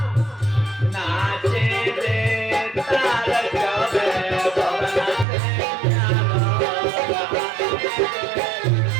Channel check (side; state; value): left; drops out; at 5.2 s